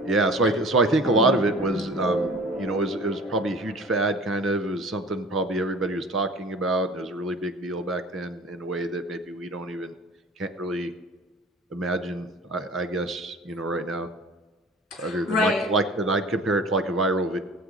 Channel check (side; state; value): both; normal; correlation 0.44